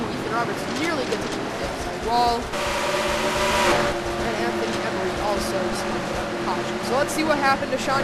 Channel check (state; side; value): identical; both; correlation 1.00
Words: Roberts nearly gets into the outside wall. And Anthony Emery also spun out the caution. So let's see what happened to Sean